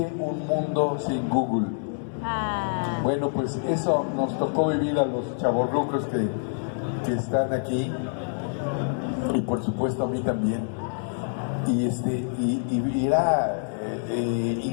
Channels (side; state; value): right; silent; digital silence